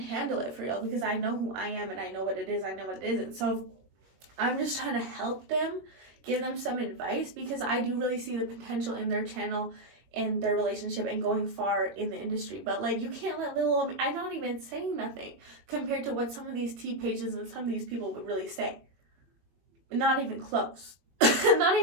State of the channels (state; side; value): late; left; 21 ms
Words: it for real. Because I know who I am, and I know what it is. I know what it isn't. So I'm just trying to help them, give them some advice, because I do really see the potential in their channel, in their relationship, and going far in the industry. But like, you can't let little old me, I'm not even saying nothing compared to what some of these tea pages and some of these people would really say. Not even close. Not